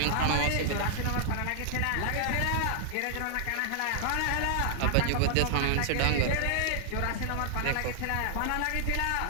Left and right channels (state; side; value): different; both; correlation -0.01